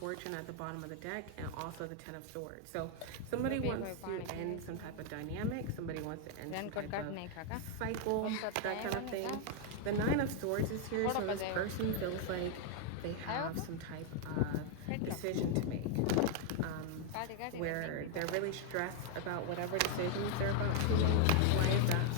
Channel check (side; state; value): both; different; correlation 0.00